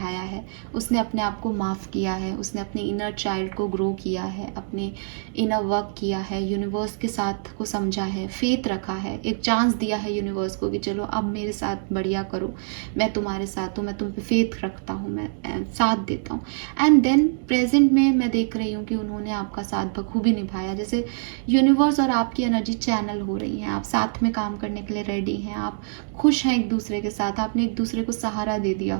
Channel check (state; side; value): silent; left; digital silence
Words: है, उसने अपने आप को माफ़ किया है, उसने अपने इनर चाइल्ड को ग्रो किया है, अपने इनर वर्क किया है, यूनिवर्स के साथ को समझा है, फेथ रखा है, एक चांस दिया है यूनिवर्स को कि चलो अब मेरे साथ बढ़िया करो, मैं तुम्हारे साथ हूँ, मैं तुम पे फेथ रखता हूँ, मैं साथ देता हूँ। एंड देन प्रेजेंट में मैं देख रही हूँ कि उन्होंने आपका साथ बखूबी निभाया। जैसे यूनिवर्स और आपकी एनर्जी चैनल हो रही है, आप साथ में काम करने के लिए रेडी हैं, आप खुश हैं एक दूसरे के साथ, आपने एक दूसरे को सहारा दे दिया